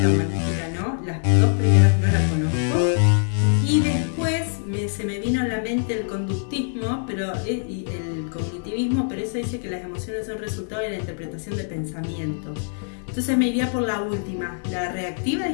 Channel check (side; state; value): right; silent; 63 dB below the other